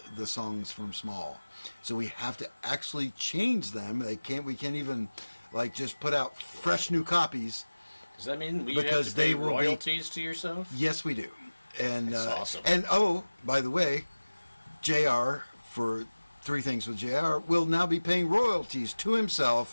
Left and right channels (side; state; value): both; inverted; correlation -1.00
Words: the songs from Small. So we have to actually change them. We can't even just put out fresh new copies. Does that mean we because have to pay they will royalties to yourself? Yes, we do. And That's awesome. And by the way, JR for Three Things with JR will now be paying royalties to